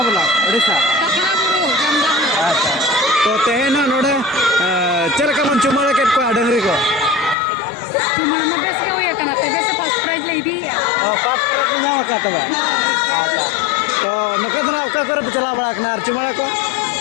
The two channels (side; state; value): right; drops out; at 7.4 s